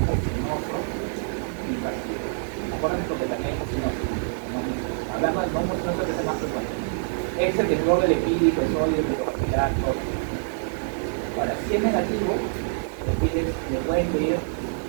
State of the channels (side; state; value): left; silent; digital silence